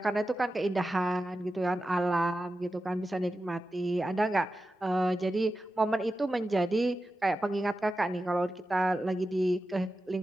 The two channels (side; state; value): both; normal; correlation 0.92